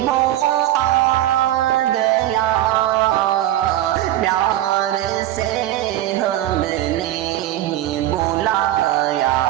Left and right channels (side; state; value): left; quieter; 13.6 dB